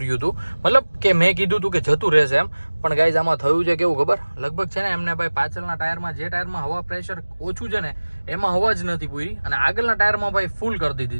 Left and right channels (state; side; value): inverted; both; correlation -1.00